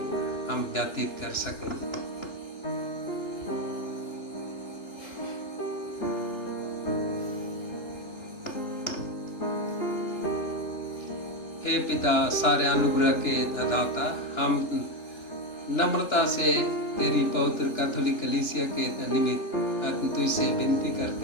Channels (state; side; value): late; right; 3.4 ms